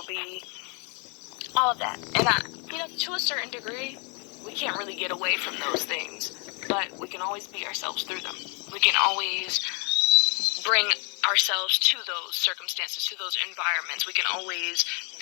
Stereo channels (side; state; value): right; quieter; 34.4 dB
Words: be, all of that. And to a certain degree, we can't really get away from those things, but we can always be ourselves through them. We can always bring ourselves to those circumstances, to those environments. We can always